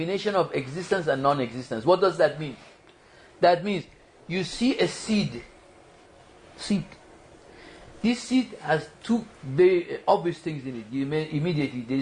of existence and non-existence. What does that mean? That means you see a seed. This seed has two very obvious things in it. You may immediately, there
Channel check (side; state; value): both; identical; correlation 1.00